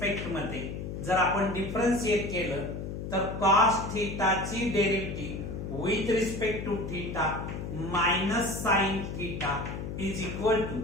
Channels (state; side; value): noise; left; hum, 6 dB below the sound